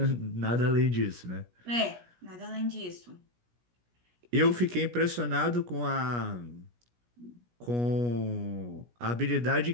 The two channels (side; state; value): left; late; 17 ms